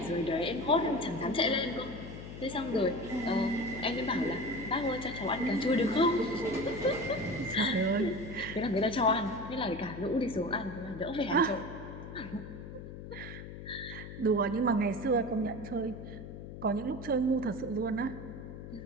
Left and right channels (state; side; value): noise; left; hum, 11 dB below the sound